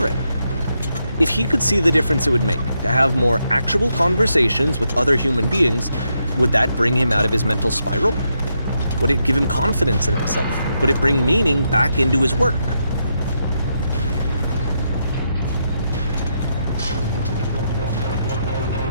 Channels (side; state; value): both; inverted; correlation -0.81